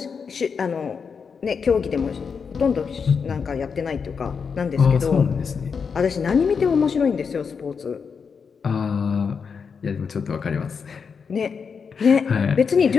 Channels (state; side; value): quieter; right; 5.9 dB